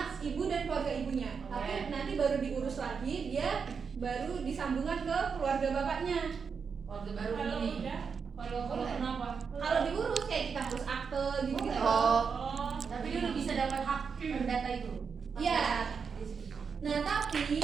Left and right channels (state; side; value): quieter; left; 5.9 dB